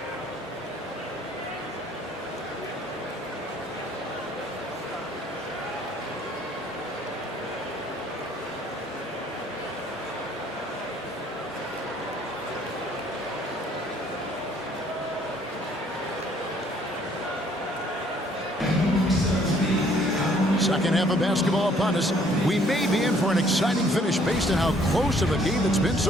Second half of basketball upon us. We may be in for an exciting finish based on how close of a game it's been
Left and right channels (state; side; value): normal; both; correlation 0.62